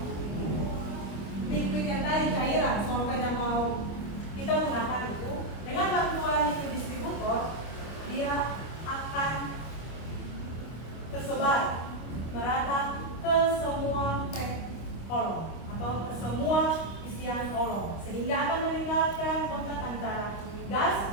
liquid yang tadi cairan, solvent yang mau kita gunakan itu, dengan bantuan liquid distributor, dia akan tersebar merata ke semua pack kolom atau ke semua isian kolom, sehingga akan meningkatkan kontak antara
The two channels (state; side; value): late; right; 25 ms